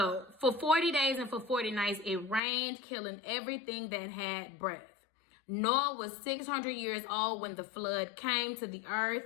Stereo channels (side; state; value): right; drops out; at 2.4 s